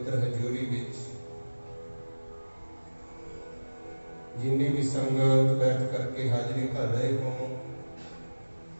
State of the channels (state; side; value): inverted; both; correlation -1.00